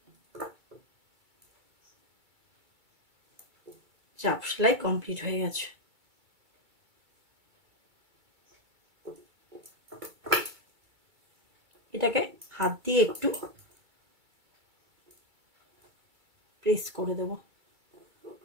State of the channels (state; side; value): late; left; 2.3 ms